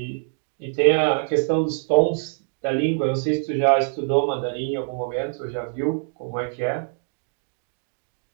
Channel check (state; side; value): silent; left; digital silence